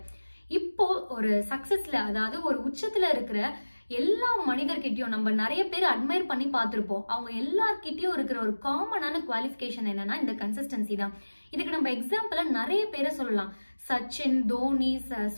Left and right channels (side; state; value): both; inverted; correlation -1.00